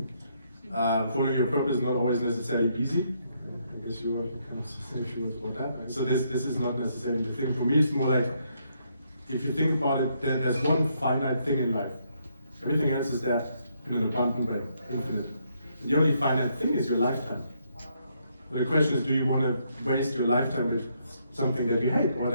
Following your purpose is not always necessarily easy. I guess you can say a few words about that. So this is not necessarily the thing. For me, it's more like, if you think about it, there's one finite thing in life. Everything else is there in an abundant way, infinite. And the only finite thing is your lifetime. So the question is, do you want to waste your lifetime with something that you hate, or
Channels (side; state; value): both; inverted; correlation -0.74